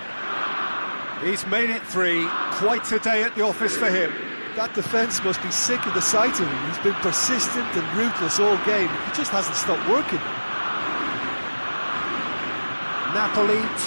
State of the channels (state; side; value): inverted; both; correlation -1.00